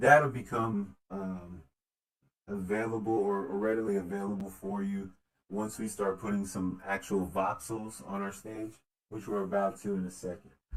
that'll become available or readily available for you once we start putting some actual voxels on our stage, which we're about to in a second.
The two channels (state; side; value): identical; both; correlation 1.00